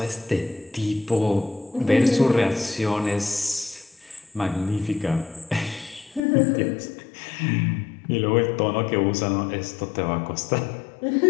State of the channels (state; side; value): drops out; right; at 6.2 s